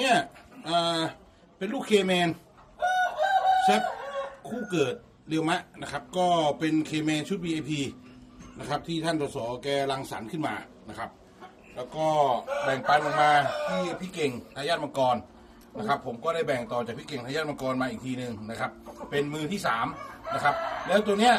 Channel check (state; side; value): identical; both; correlation 1.00